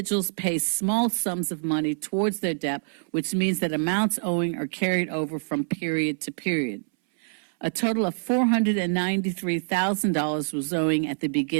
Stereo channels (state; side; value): silent; left; 61 dB below the other